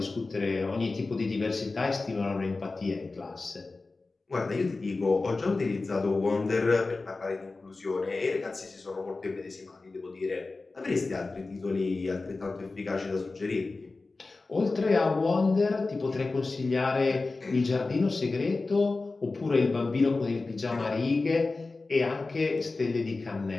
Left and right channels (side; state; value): right; quieter; 3.6 dB